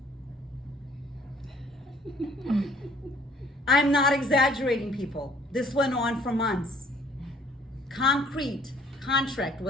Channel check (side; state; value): both; normal; correlation 0.59